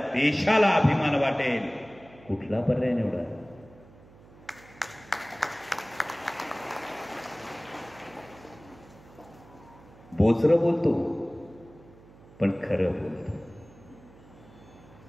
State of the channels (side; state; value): right; noise; hum, 23 dB below the sound